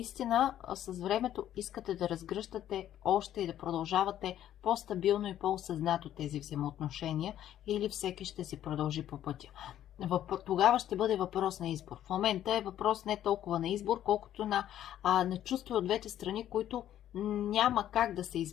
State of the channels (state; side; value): quieter; right; 11.6 dB